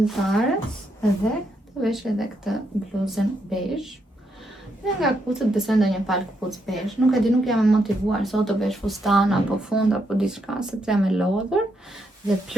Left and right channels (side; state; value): both; normal; correlation 0.79